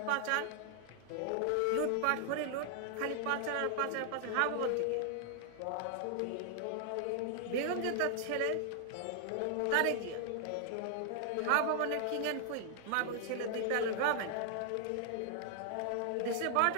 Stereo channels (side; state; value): both; different; correlation -0.01